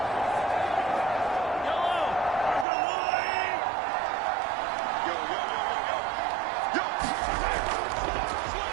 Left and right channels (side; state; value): left; drops out; at 2.7 s